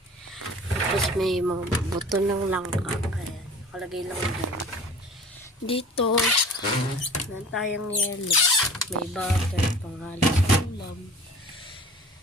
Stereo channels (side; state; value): both; normal; correlation 0.44